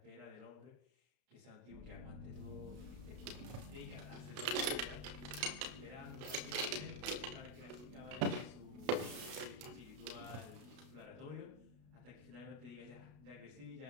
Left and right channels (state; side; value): late; left; 33 ms